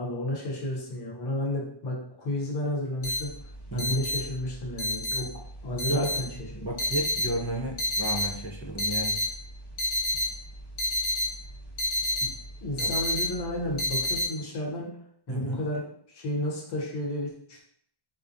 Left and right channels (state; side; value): late; right; 1.1 ms